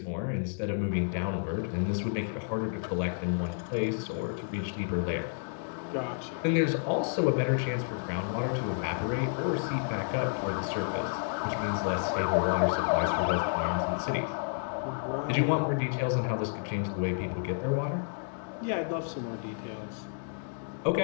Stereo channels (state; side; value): silent; right; digital silence